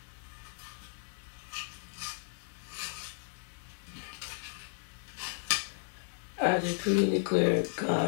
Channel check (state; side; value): silent; right; digital silence